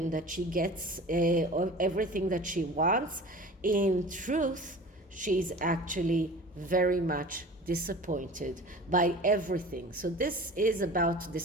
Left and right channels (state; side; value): normal; both; correlation 0.40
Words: that she gets everything that she wants, in truth, she's actually very much disappointed by everything. So this is about